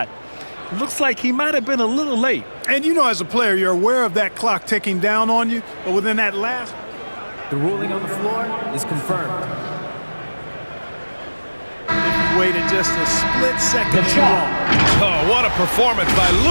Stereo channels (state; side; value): inverted; both; correlation -1.00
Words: Looks like he might have been a little late. And you know, as a player, you're aware of that clock ticking down on you, but within that last... The ruling on the floor is confirmed. Waited just a split second too long. Oh, what a performance by